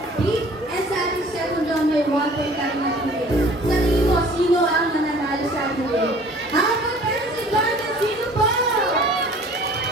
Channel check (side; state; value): both; normal; correlation 0.50